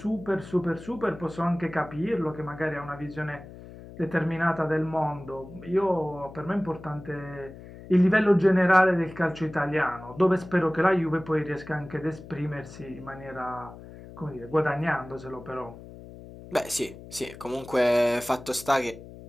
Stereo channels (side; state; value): left; noise; hum, 16 dB below the sound